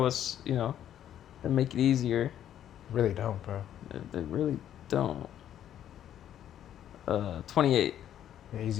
us, and make it easier. Really don't, bro. They really don't. 28. Yeah, he's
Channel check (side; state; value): right; quieter; 10.7 dB